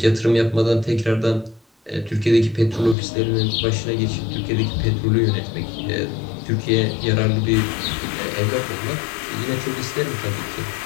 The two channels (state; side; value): drops out; right; at 3.0 s